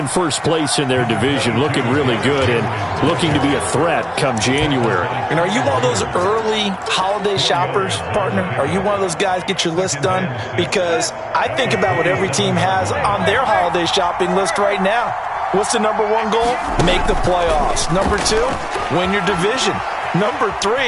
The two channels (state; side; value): identical; both; correlation 1.00